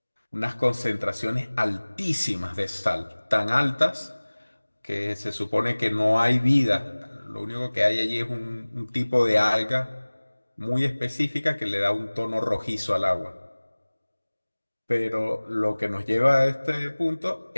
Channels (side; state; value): both; inverted; correlation -1.00